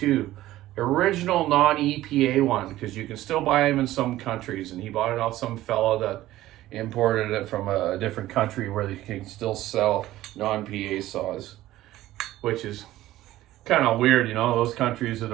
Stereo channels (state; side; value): quieter; left; 15.3 dB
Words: original non-EPA one, because you can still buy them in some countries, and he bought it off some fella that imported it from a different country where they can still sell non-PA saws, which is kind of weird, those countries are